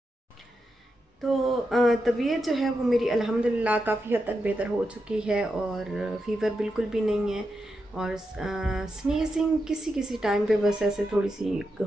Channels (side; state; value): both; normal; correlation 0.87